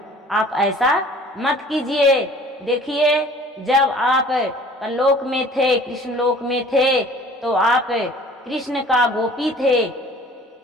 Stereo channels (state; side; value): normal; both; correlation 0.49